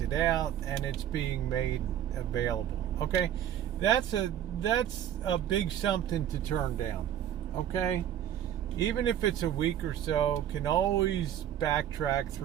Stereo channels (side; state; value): left; quieter; 10.5 dB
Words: out and it's being made available. Okay, that's a big something to turn down. Okay, even if it's a week or so, can always backtrack